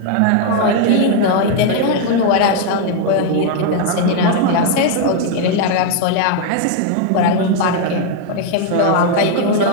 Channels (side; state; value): both; different; correlation 0.00